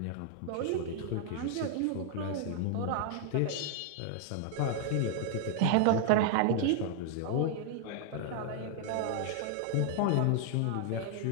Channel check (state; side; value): different; both; correlation -0.01